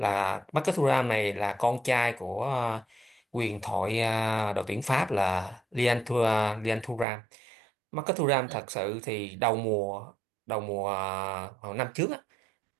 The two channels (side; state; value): left; drops out; at 7.1 s